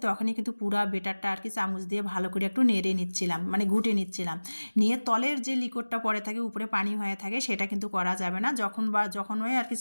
তখনই কিন্তু পুরা বেটারটা আর কি চামচ দিয়ে ভালো করে একটু নেড়ে নিচ্ছিলাম, মানে ঘুটে নিচ্ছিলাম। নিয়ে তলের যে লিকোডটা পড়ে থাকে উপরে পানি হয়ে থাকে সেটা কিন্তু করা যাবে না। যখনই আর কি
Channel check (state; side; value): inverted; both; correlation -1.00